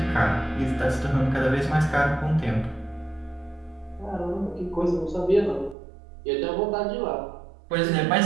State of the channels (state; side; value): drops out; left; at 5.8 s